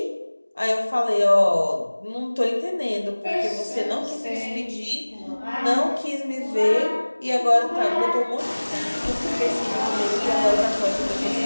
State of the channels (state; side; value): inverted; both; correlation -1.00